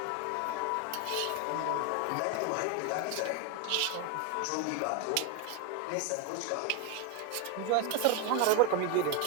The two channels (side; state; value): both; different; correlation 0.01